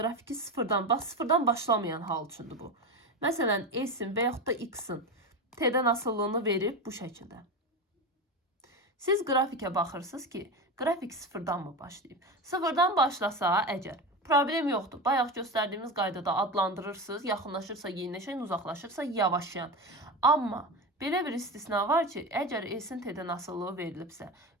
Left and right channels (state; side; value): normal; both; correlation 0.21